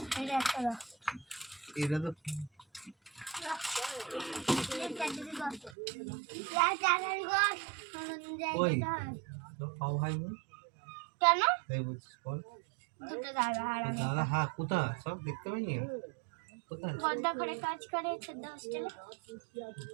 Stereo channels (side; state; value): left; drops out; at 5.8 s